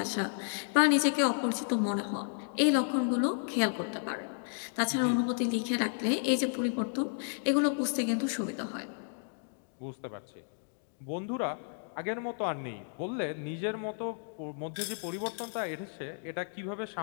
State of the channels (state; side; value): silent; right; digital silence